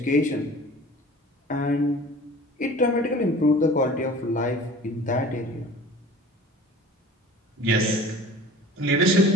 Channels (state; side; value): normal; both; correlation 0.43